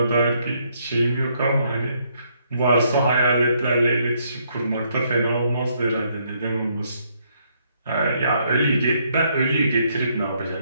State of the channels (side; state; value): both; inverted; correlation -0.72